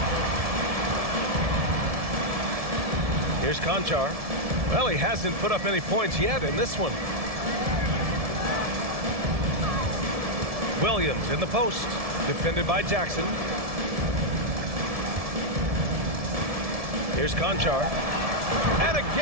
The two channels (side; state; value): left; late; 1.7 ms